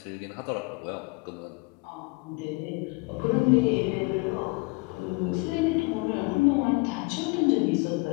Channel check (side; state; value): right; quieter; 28.4 dB